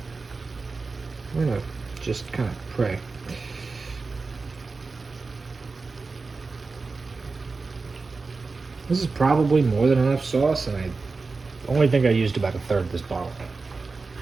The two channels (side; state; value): left; quieter; 4.1 dB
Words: we're gonna just kind of pray. This is probably more than enough sauce, and I only think I used about a third of this bottle.